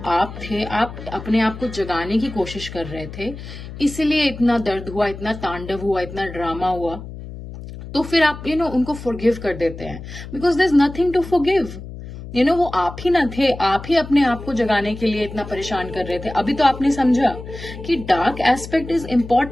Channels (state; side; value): noise; left; hum, 12 dB below the sound